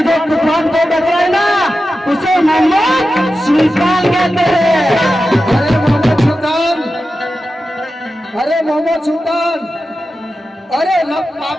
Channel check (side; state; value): both; normal; correlation 0.92